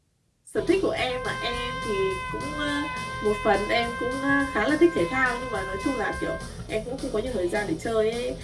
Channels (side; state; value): both; identical; correlation 1.00